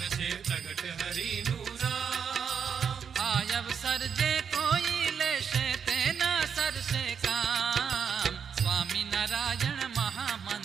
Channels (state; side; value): quieter; left; 7.0 dB